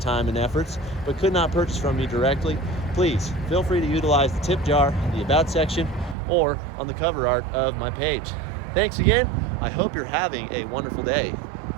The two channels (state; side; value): drops out; left; at 6.2 s